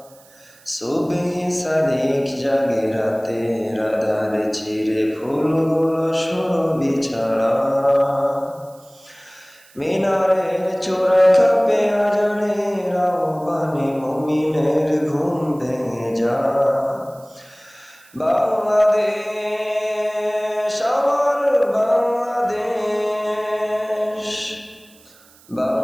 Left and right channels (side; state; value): right; noise; hiss, 27 dB below the sound